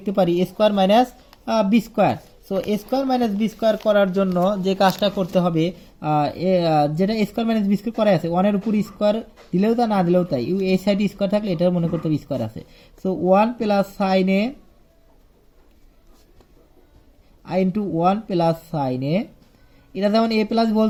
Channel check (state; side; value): identical; both; correlation 1.00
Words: পারি square minus B square. So square minus B square করার জন্য যে কাজটা করতে হবে, যেটা স্কোয়ার মাইনাস বি স্কোয়ার করা আছে, 1 এর উপর স্কোয়ার দিলেও তা না দিলেও তাই, এই সাইডে স্কোয়ার থাকলে এটা মনে করতে হবে স্কোয়ার আছে। So 1 plus sine A into 1 plus sine A, এটা যেমন এ প্লাস হোল